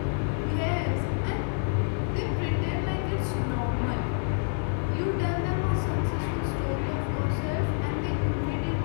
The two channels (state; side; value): silent; right; digital silence